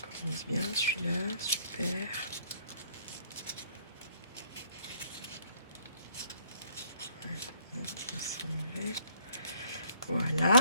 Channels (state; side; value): inverted; both; correlation -0.62